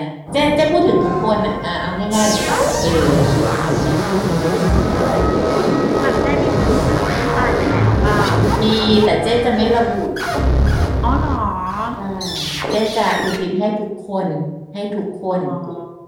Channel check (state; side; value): identical; both; correlation 1.00